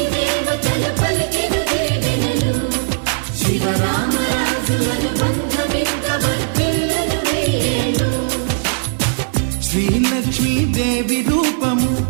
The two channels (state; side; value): silent; left; digital silence